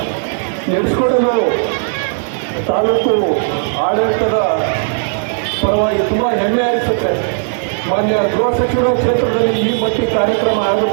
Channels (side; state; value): left; silent; digital silence